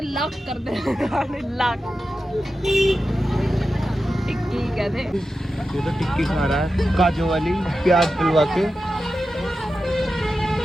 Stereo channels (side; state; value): both; normal; correlation 0.92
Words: लाख कर दे। लाख टिक्की कहते। ये तो टिक्की खा रहा है काजू वाली, प्याज डलवा के